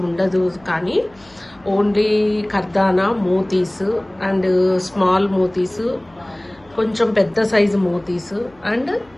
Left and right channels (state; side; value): noise; left; hum, 30 dB below the sound